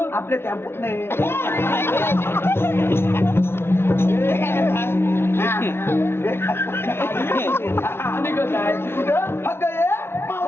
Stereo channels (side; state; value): right; late; 0.12 ms